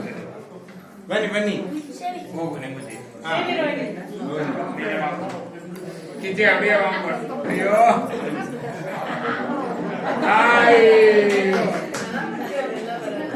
బన్నీ బన్నీ కించి అడియా అయ్యో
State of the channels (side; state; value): both; identical; correlation 1.00